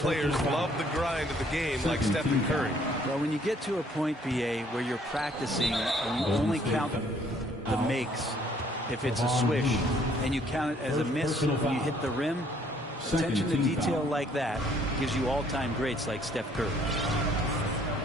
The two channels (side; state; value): both; normal; correlation 0.62